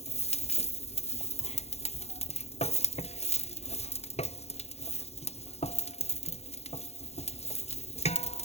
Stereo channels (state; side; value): late; right; 0.31 ms